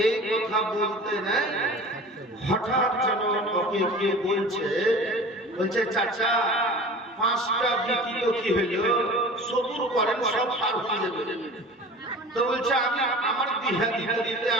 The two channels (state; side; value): normal; both; correlation 0.39